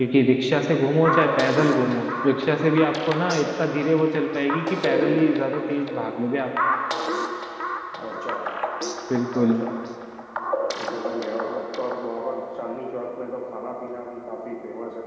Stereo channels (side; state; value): both; identical; correlation 1.00